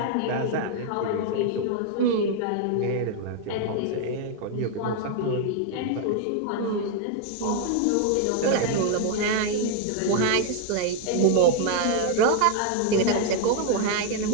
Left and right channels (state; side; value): different; both; correlation 0.00